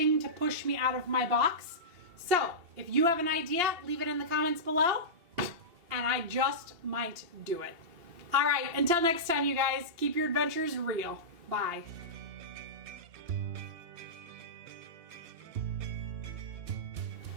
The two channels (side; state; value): left; late; 2.8 ms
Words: to push me out of my box. So if you have an idea, leave it in the comments below, and I just might do it. All right, until next time, you guys, keep your adventures real. Bye.